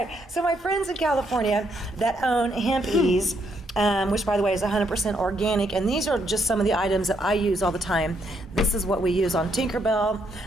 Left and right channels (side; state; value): both; normal; correlation 0.74